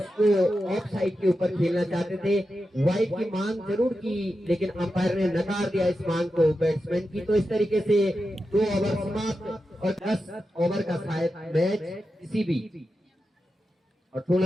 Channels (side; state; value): both; normal; correlation 0.90